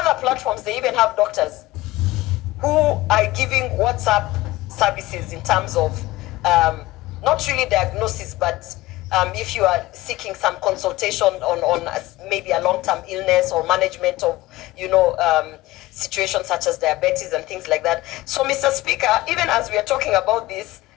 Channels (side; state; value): right; quieter; 18.3 dB